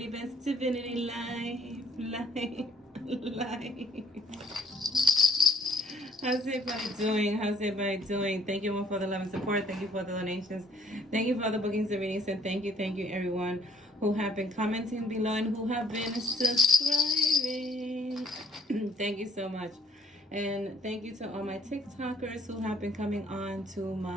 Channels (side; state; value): both; normal; correlation 0.60